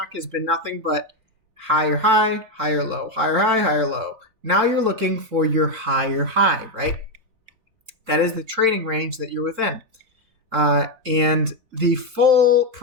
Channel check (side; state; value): left; late; 3.7 ms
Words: has been nothing but higher high, higher low, higher high, higher low. Now you're looking for your higher high, right? That is the trading range that you're within. And the full